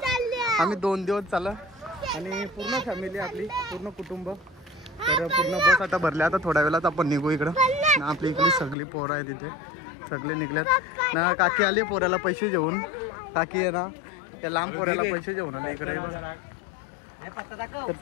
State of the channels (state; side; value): drops out; right; at 8.8 s